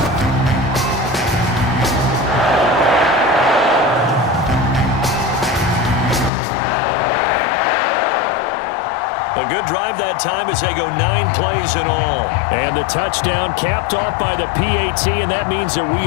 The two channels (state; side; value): drops out; right; at 6.3 s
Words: A good drive that time as they go 9 plays in all. And the touchdown capped off by the PAT, and that means that